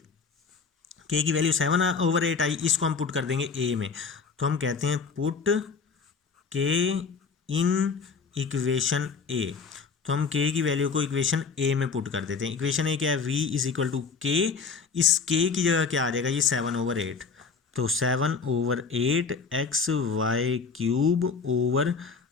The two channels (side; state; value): right; quieter; 5.2 dB